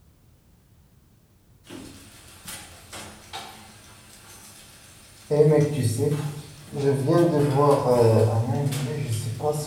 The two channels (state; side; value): identical; both; correlation 1.00